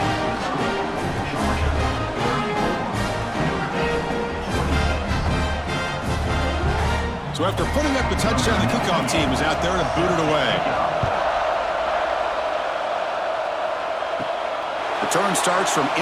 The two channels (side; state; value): both; identical; correlation 1.00